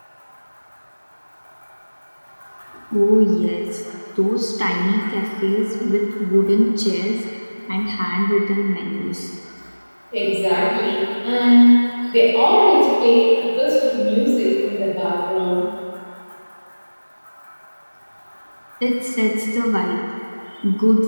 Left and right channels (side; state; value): both; inverted; correlation -1.00